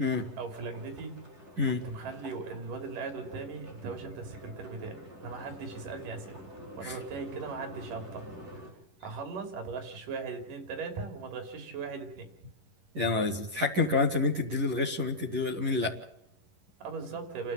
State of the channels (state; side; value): late; left; 11 ms